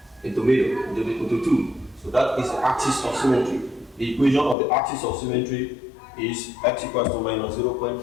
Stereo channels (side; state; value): right; drops out; at 4.5 s